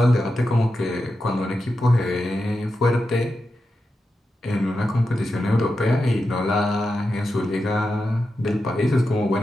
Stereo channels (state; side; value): normal; both; correlation 0.89